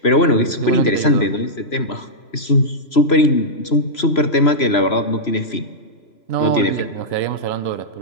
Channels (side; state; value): right; late; 3.0 ms